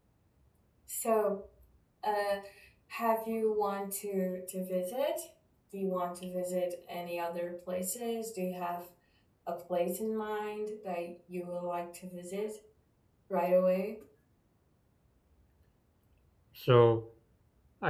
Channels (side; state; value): both; identical; correlation 1.00